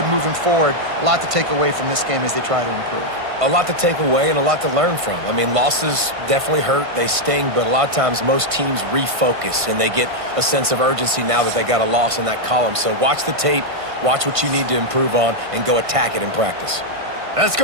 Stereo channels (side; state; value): left; late; 1.5 ms